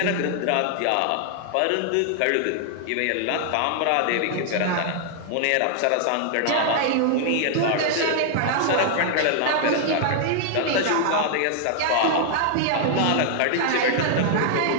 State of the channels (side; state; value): both; different; correlation -0.01